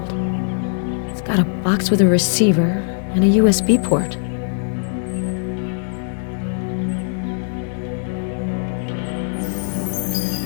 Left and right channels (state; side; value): silent; right; digital silence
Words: It's got a box with a receiver and a USB port.